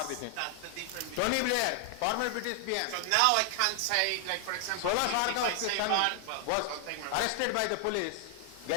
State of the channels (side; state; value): both; different; correlation 0.00